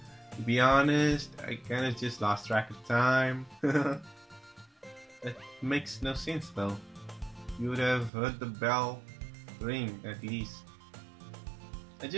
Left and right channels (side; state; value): left; drops out; at 8.1 s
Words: To be honest, I kind of just lost track of time. That makes no sense though. You would have heard the bell ring at least.